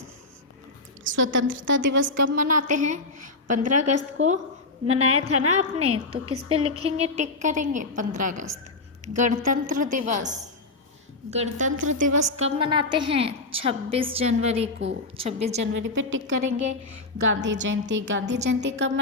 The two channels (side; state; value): right; quieter; 3.3 dB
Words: स्वतंत्रता दिवस कब मनाते हैं? 15 अगस्त को मनाया था ना आपने, तो किस पे लिखेंगे, टिक करेंगे? 15 अगस्त। गणतंत्र दिवस कब मनाते हैं? 26 जनवरी को। 26 जनवरी पे टिक करेंगे। गांधी जयंती कब